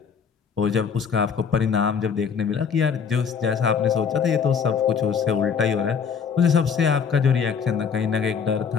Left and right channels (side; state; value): right; quieter; 6.5 dB